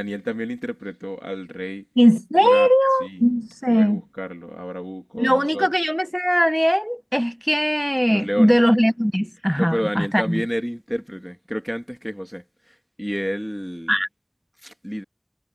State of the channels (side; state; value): both; identical; correlation 1.00